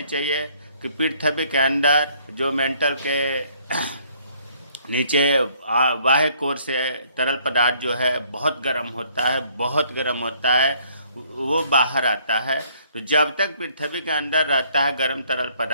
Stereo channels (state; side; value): inverted; both; correlation -0.63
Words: चाहिए कि पृथ्वी के अंदर जो मेंटल के नीचे बाह्य कोर से तरल पदार्थ जो है बहुत गर्म होता है, बहुत गर्म होता है, वो बाहर आता है। तो जब तक पृथ्वी के अंदर रहता है गर्म तरल